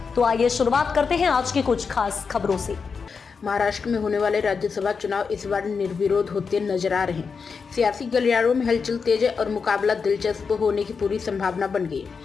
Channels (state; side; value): quieter; right; 5.4 dB